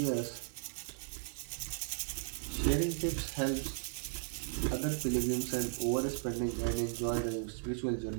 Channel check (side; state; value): left; silent; digital silence